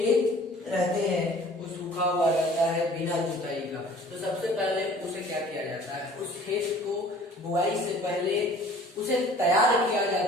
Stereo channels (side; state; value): both; normal; correlation 0.50